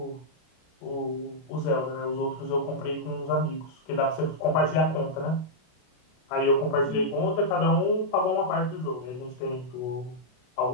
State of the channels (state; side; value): late; right; 32 ms